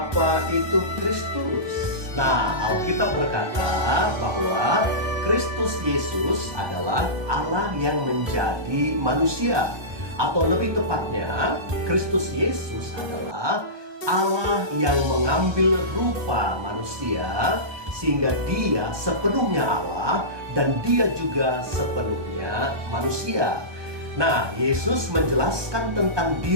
itu Kristus? Nah, Alkitab berkata bahwa Kristus Yesus adalah Allah yang menjadi manusia. Atau lebih tepatnya, Kristus Yesus adalah Allah yang mengambil rupa manusia sehingga dia sepenuhnya Allah dan dia juga sepenuhnya manusia. Nah, Yesus menjelaskan tentang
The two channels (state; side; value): late; left; 1.2 ms